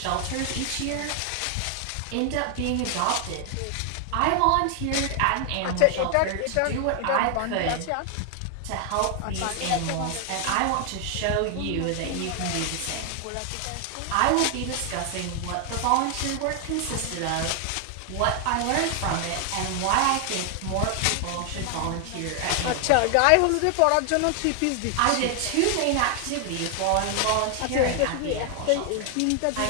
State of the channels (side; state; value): both; different; correlation 0.00